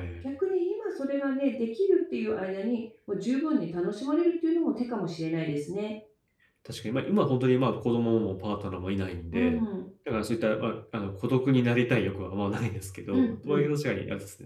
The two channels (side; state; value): both; identical; correlation 1.00